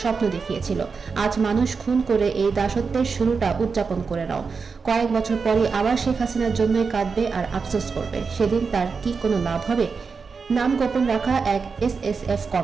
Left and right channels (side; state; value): left; quieter; 5.1 dB